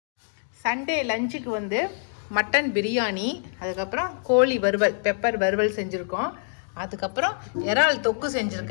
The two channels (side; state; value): right; silent; digital silence